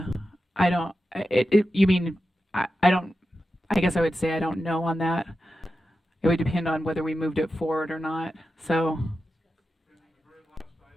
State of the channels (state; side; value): normal; both; correlation 0.91